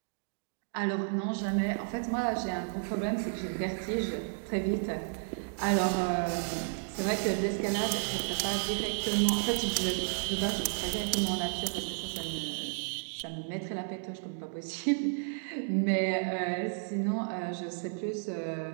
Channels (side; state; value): left; silent; digital silence